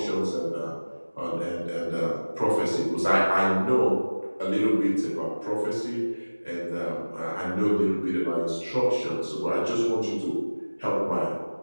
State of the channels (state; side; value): inverted; both; correlation -1.00